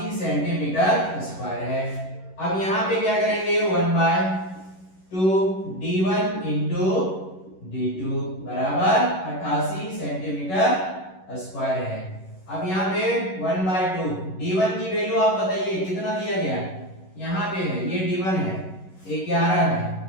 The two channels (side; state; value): right; late; 11 ms